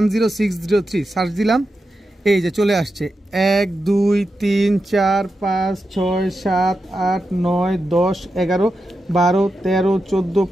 সার্চ দিলাম, এই যে চলে আসছে। 1 2 3 4 5 6 7 8 9 10 11 12 13 14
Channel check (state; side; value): normal; both; correlation 0.89